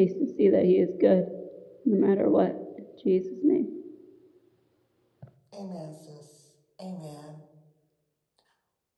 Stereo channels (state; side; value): identical; both; correlation 1.00